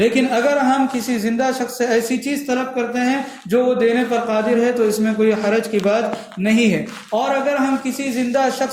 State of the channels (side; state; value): both; identical; correlation 1.00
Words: اگر ہم کسی زندہ شخص سے ایسی چیز طلب کرتے ہیں جو وہ دینے پر قادر ہے تو اس میں کوئی حرج کی بات نہیں ہے۔ اور اگر ہم کسی زندہ